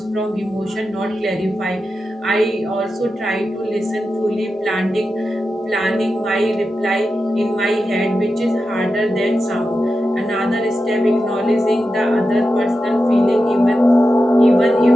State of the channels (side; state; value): both; normal; correlation 0.91